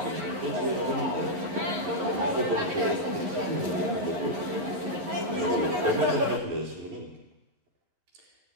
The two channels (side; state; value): left; late; 11 ms